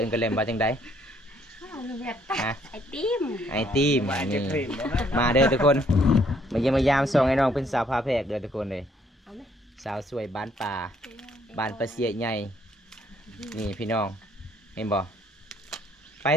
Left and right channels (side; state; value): both; normal; correlation 0.66